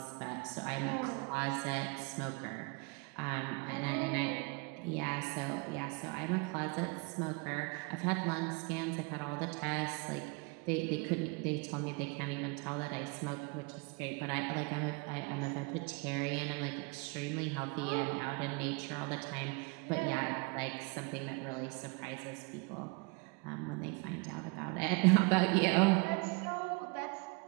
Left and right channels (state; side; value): quieter; left; 30.2 dB